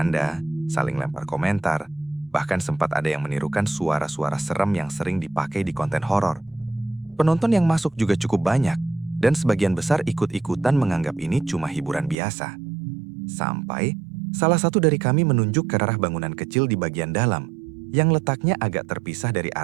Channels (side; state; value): left; drops out; at 12.2 s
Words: saling lempar komentar, bahkan sempat ada yang menirukan suara-suara serem yang sering dipakai di konten horor. Penonton yang masuk juga cukup banyak, dan sebagian besar ikut-ikutan menganggap ini cuma hiburan biasa. Sampai, salah satu dari kami menunjuk ke arah bangunan kecil di bagian dalam, yang letaknya agak terpisah dari